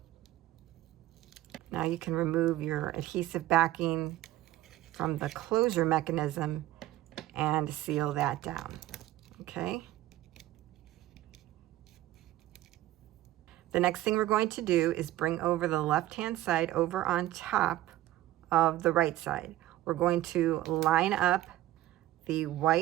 Now you can remove your adhesive backing from the closure mechanism and seal that down. Okay. The next thing we're going to do is bring over the left-hand side over on top of the right side. We're going to line up the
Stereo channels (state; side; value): quieter; left; 15.2 dB